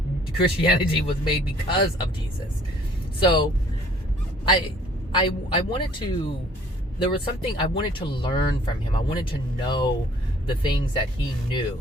Christianity was made because of Jesus. So I wanted to there was something I wanted to learn from him. I wanted to know the things that he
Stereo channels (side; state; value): both; normal; correlation 0.56